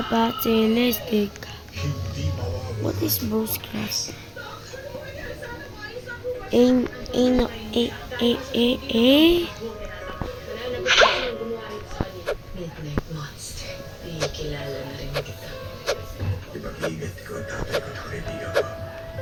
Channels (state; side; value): identical; both; correlation 1.00